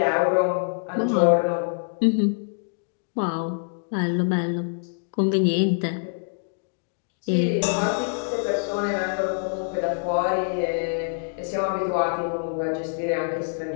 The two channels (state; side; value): silent; right; digital silence